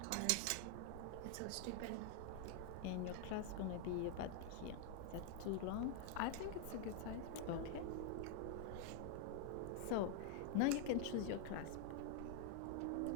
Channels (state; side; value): different; both; correlation 0.00